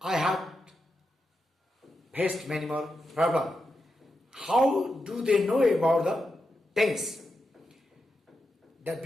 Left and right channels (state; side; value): normal; both; correlation 0.87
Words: I had faced many more problems. How do they know about the tense? That